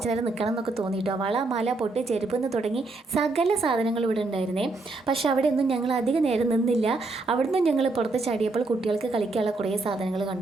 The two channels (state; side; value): quieter; left; 3.4 dB